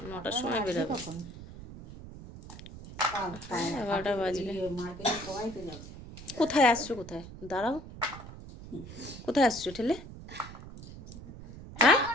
9টার সময় বেরোবে। 11টা বাজবে। কোথায় আসছো? কোথায়? দাঁড়াও, কোথায় আসছো ঠেলে? হ্যাঁ,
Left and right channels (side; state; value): right; noise; rumble, 14 dB below the sound